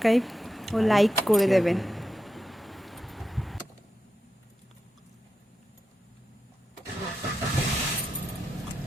ও লাইক করে দেবেন।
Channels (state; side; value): normal; both; correlation 0.88